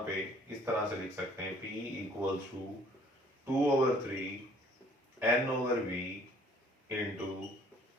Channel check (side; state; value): both; normal; correlation 0.57